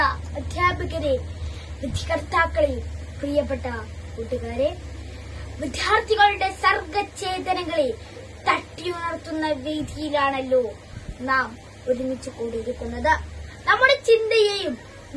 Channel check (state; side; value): identical; both; correlation 1.00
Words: അധ്യാപകരെ, വിധികർത്താക്കളെ, പ്രിയപ്പെട്ട കൂട്ടുകാരെ, വിദ്യാർത്ഥികളുടെ സർഗചേതനകളെ തട്ടിയുണർത്തുന്ന വേദിയിലാണല്ലോ നാം ഒരുമിച്ച് കൂടിയിരിക്കുന്നത്. നമ്മുടെ ചിന്തയെയും